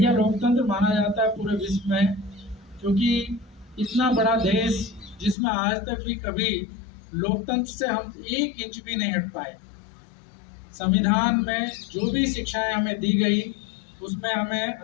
लोकतंत्र माना जाता है पूरे विश्व में, क्योंकि इतना बड़ा देश जिसमें आज तक भी कभी लोकतंत्र से हम 1 इंच भी नहीं हट पाए। संविधान में जो भी शिक्षाएं हमें दी गई, उसमें हमें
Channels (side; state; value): right; drops out; at 5.4 s